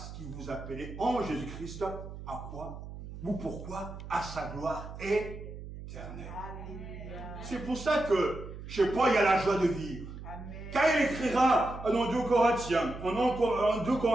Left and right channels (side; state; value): right; noise; hum, 11 dB below the sound